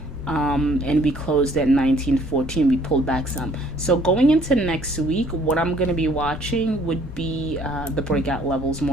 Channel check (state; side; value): normal; both; correlation 0.60